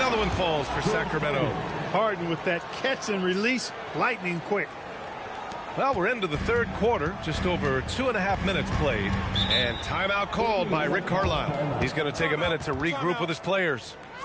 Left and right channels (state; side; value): identical; both; correlation 1.00